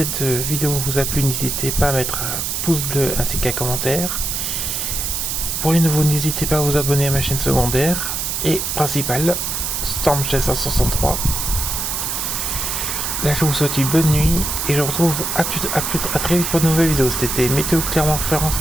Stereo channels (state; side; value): noise; right; hiss, 2 dB below the sound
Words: vidéo vous a plu, n'hésitez pas à mettre un pouce bleu ainsi qu'un commentaire. Pour les nouveaux, n'hésitez pas à vous abonner à ma chaîne secondaire et principale, Storm Chaser 63. Là je vous souhaite une bonne nuit et je vous retrouve à très vite pour de nouvelles vidéos. C'était Météo Clermont-Ferrand